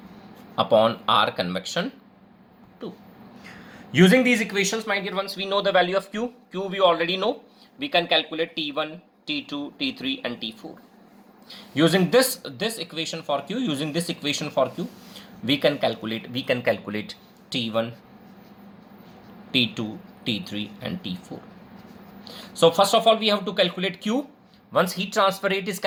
upon R convection 2. Using these equations, my dear ones, we know the value of Q. Q we already know. We can calculate T1, T2, T3 and T4. Using this equation for Q, we can calculate T1, T2, T3 and T4. So first of all, we have to calculate Q. Once heat transfer rate is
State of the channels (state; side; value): identical; both; correlation 1.00